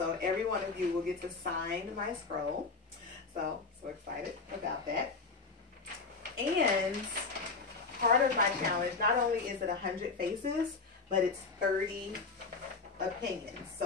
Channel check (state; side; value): quieter; right; 4.1 dB